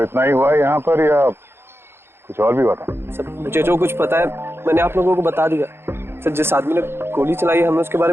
ही हुआ है यहाँ पर या कुछ और भी हुआ था? सर मुझे जो कुछ पता है मैंने आप लोगों को बता दिया। सर जिस आदमी ने गोली चलाई है हमें उसके बारे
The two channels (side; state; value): left; late; 0.11 ms